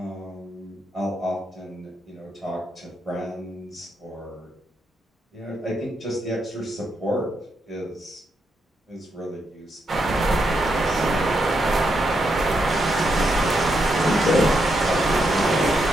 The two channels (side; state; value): both; normal; correlation 0.81